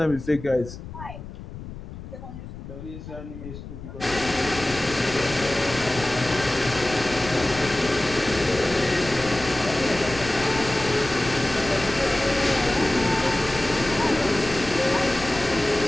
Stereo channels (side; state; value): left; noise; rumble, 12 dB below the sound